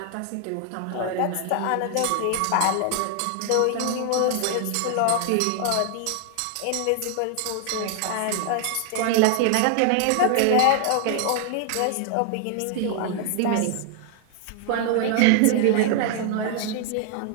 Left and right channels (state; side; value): different; both; correlation 0.00